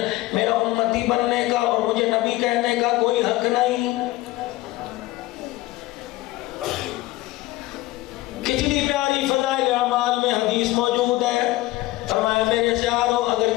میرا امتی بننے کا اور مجھے نبی کہنے کا کوئی حق نہیں۔ کتنی پیاری فضائل اعمال میں حدیث موجود ہے۔ فرمایا میرے پیارو اگر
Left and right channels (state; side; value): quieter; right; 18.2 dB